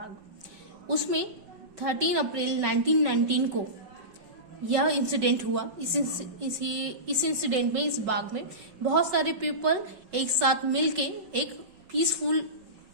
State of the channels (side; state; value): left; late; 5.4 ms